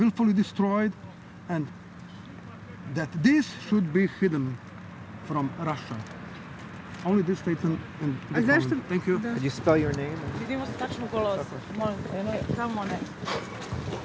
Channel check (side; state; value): both; identical; correlation 1.00